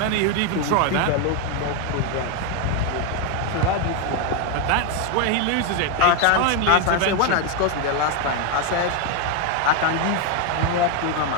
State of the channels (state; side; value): different; both; correlation 0.01